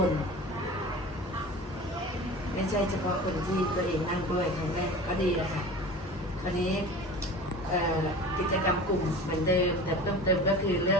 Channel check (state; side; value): normal; both; correlation 0.37